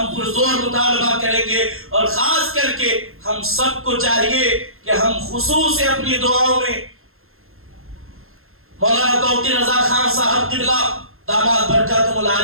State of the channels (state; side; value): late; left; 0.61 ms